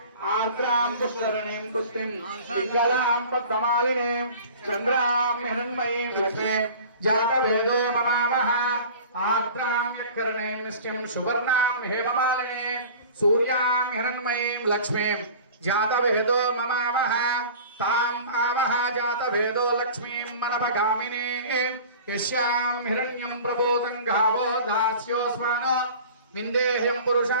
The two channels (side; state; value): both; inverted; correlation -0.41